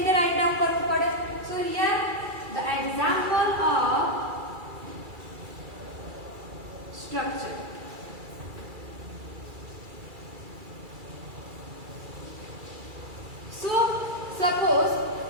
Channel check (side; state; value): left; late; 2.3 ms